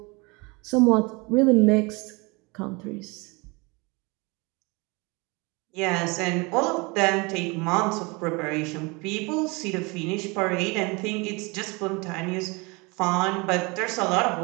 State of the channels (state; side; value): quieter; left; 27.2 dB